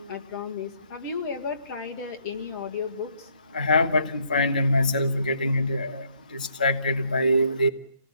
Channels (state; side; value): inverted; both; correlation -0.69